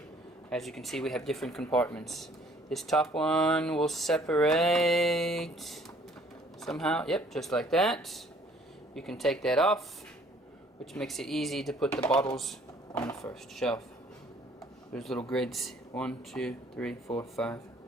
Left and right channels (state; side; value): normal; both; correlation 0.58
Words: As you can see, we have different compartments. This top one will separate somehow. Yep, just like that. You can take that off, which makes it easy to put the bottles on the first shelf. There's little grids. 1, 2, 3, 4, 5.